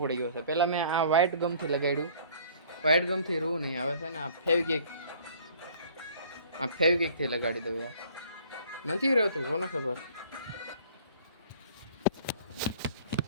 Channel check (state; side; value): inverted; both; correlation -0.53